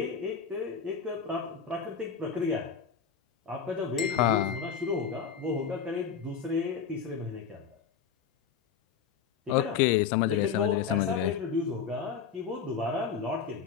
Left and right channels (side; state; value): right; quieter; 6.9 dB